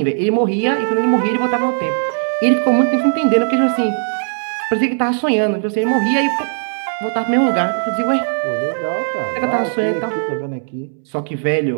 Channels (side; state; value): left; silent; 68 dB below the other